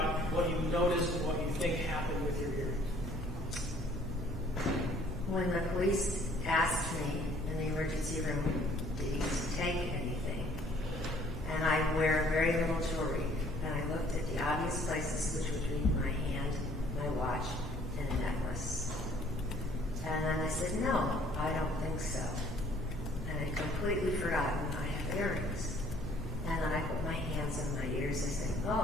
what you noticed and what you think happened with your earrings. When the police asked me in the emergency room, did he take anything? And I wear very little jewelry. And I looked at the obvious places, which would be my hand, my watch, and a necklace. And then I said, no, I don't think so. And I'd completely forgotten I have earrings. And then I put my hands on my ears and said,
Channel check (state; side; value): normal; both; correlation 0.58